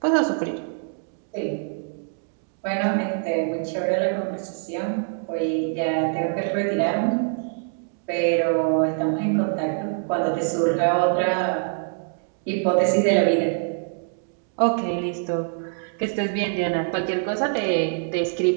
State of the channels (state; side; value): silent; left; 62 dB below the other